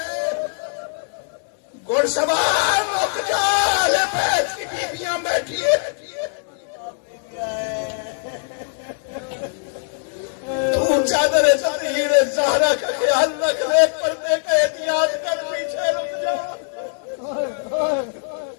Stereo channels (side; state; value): right; silent; 64 dB below the other